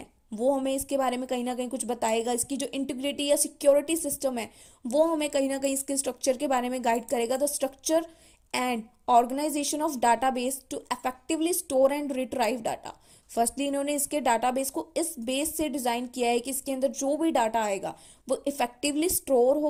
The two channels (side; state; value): both; identical; correlation 1.00